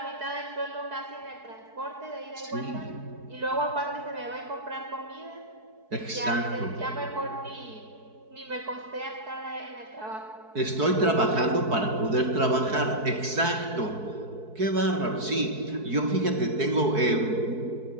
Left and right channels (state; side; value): late; left; 4.6 ms